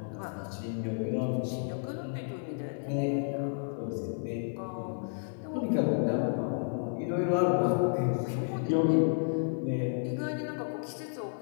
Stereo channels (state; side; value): silent; right; digital silence